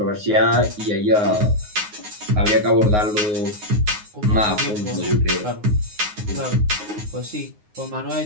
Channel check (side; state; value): left; late; 9.6 ms